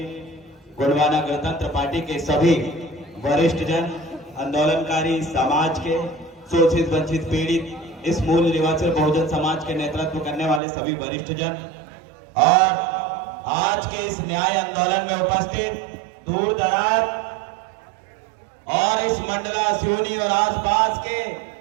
गोंडवाना गणतंत्र पार्टी के सभी वरिष्ठ जन, आंदोलनकारी समाज के शोषित वंचित पीड़ित, इस मूल निवासी बहुजन समाज के नेतृत्व करने वाले सभी वरिष्ठ जन और आज के इस न्याय आंदोलन में उपस्थित दूर दराज और इस मंडला, सिवनी और आसपास के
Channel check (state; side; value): drops out; left; at 10.6 s